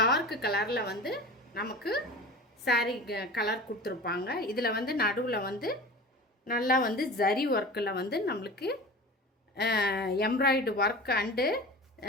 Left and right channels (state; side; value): normal; both; correlation 0.35